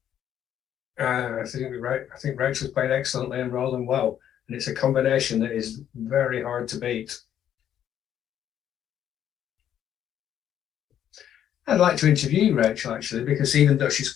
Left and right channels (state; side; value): quieter; right; 10.2 dB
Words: I think Rachel's played excellently and rolling well, and it's a combination that is very hard to beat. I'd like to interview Rachel actually, because even though she's